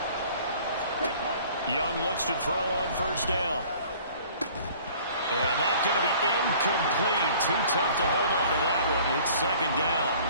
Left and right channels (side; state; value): both; inverted; correlation -0.51